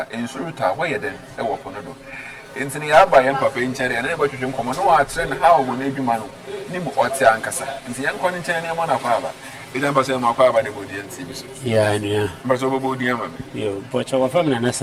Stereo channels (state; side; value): identical; both; correlation 1.00